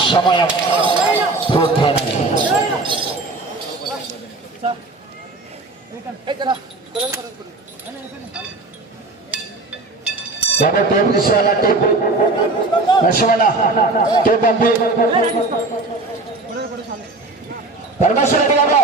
సమయం పూర్తయినది. టేప్ తీసుకోవాలా? టేప్ నష్టమన్న టేప్ పంపి పరమేశ్వర రెడ్డి గారు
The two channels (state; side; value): quieter; left; 3.2 dB